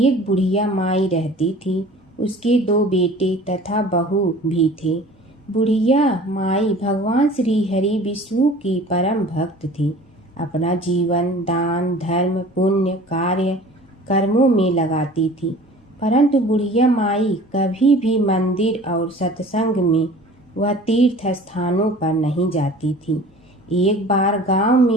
बुढ़िया माई रहती थी। उसके 2 बेटे तथा बहू भी थे। बुढ़िया माई भगवान श्री हरि विष्णु की परम भक्त थी। अपना जीवन दान धर्म पुण्य कार्य कर्मों में लगाती थी, परंतु बुढ़िया माई कभी भी मंदिर और सत्संग में व तीर्थ स्थानों पर नहीं जाती थी। एक बार गांव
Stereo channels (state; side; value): normal; both; correlation 0.45